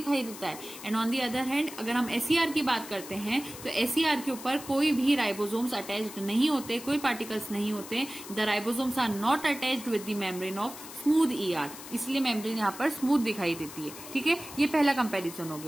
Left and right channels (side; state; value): left; noise; hiss, 13 dB below the sound